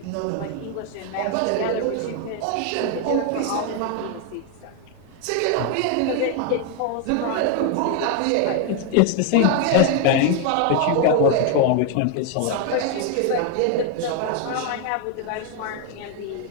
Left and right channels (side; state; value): both; different; correlation 0.01